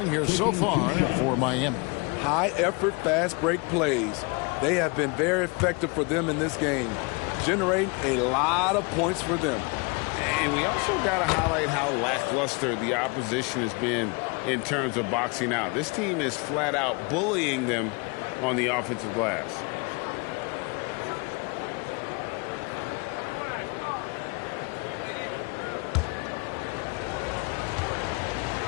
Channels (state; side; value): quieter; right; 30.2 dB